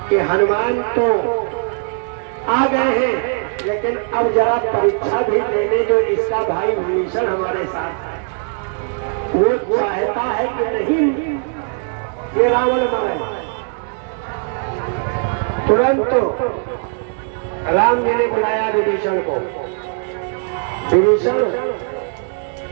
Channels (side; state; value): left; silent; 56 dB below the other